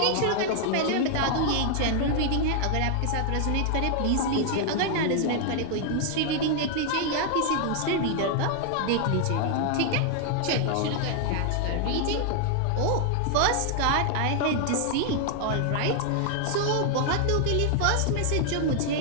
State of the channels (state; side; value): different; both; correlation 0.00